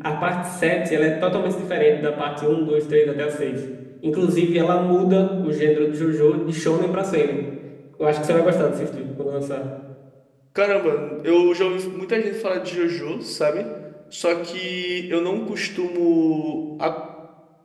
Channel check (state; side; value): identical; both; correlation 1.00